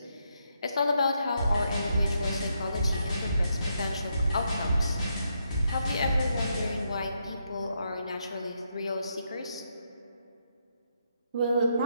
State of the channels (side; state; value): both; inverted; correlation -0.79